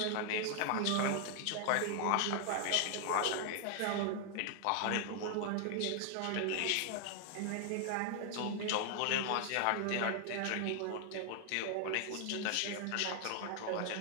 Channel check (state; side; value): different; both; correlation 0.00